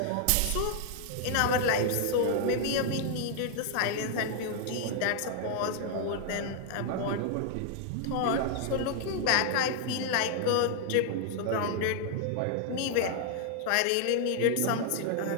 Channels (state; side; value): different; both; correlation 0.00